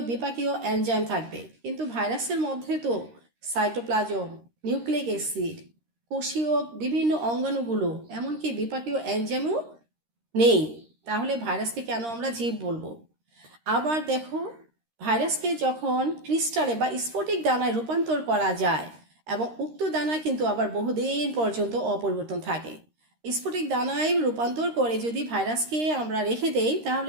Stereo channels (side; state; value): left; late; 13 ms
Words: বিপাকীয় এনজাইম থাকবে। কিন্তু ভাইরাসের মধ্যে তো সাইটোপ্লাজম, নিউক্লিক অ্যাসিড, কোষীয় বিভিন্ন অঙ্গাণুগুলো, এমনকি বিপাকীয় এনজাইমও নেই। তাহলে ভাইরাসকে কেন আমরা জীব বলবো? আবার দেখো, ভাইরাসকে যখন ক্রিস্টালে বা স্ফটিক দানায় রূপান্তর করা যায়, এবং উক্ত দানা কিন্তু আবার বহুদিন পর্যন্ত অপরিবর্তন থাকে। স্ফটিক দানায় রূপান্তর করে যদি ভাইরাসকে আমরা রেখে দেই,